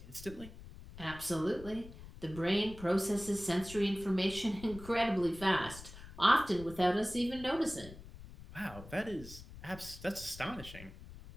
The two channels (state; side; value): noise; left; rumble, 15 dB below the sound